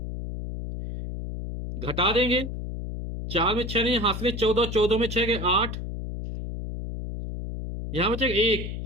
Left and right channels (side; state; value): left; noise; hum, 6 dB below the sound